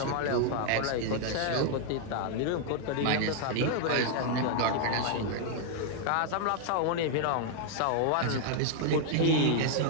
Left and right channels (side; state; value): both; different; correlation 0.00